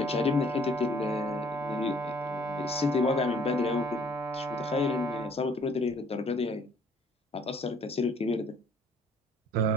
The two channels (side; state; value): both; normal; correlation 0.58